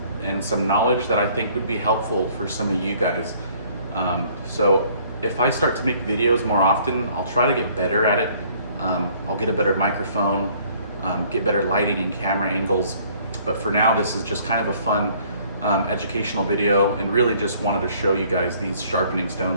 and some knowledge that I think would be helpful for some of you guys. So if I start to make videos more often, I'll try to get better at it. I'll get a better microphone, get better lighting and camera angles. But for now, this is just kind of a fun educational video, and really just wanted to show you guys these sharpening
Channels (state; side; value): inverted; both; correlation -0.59